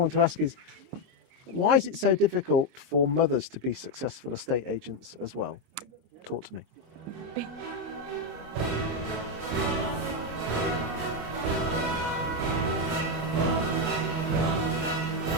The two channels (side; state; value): left; late; 26 ms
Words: to ask is, why is it so difficult for mothers to be successful estate agents as well? Talk to me.